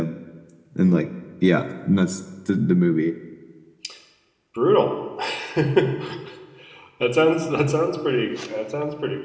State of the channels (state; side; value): identical; both; correlation 1.00